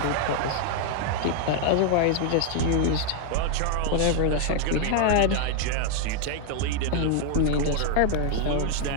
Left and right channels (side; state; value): both; different; correlation 0.00